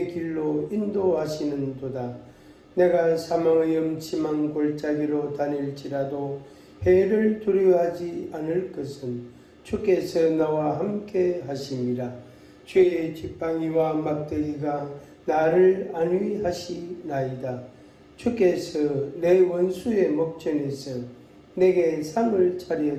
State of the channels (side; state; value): both; identical; correlation 1.00